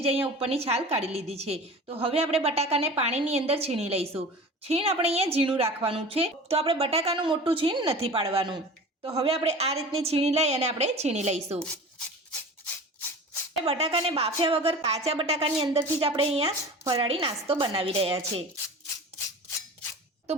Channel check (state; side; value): normal; both; correlation 0.37